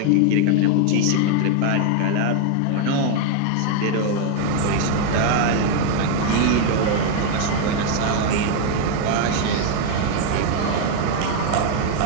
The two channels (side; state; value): both; different; correlation 0.00